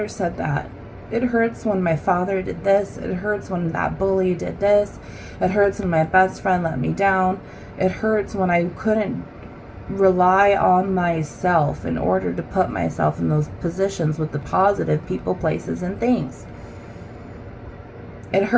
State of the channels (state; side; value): identical; both; correlation 1.00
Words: said that. It hurts when my father did this. It hurts when that bully did this. It hurts when my best friend let me down. It hurts when I couldn't rely on myself in order to put myself in those positions with the positive people, places, and things. It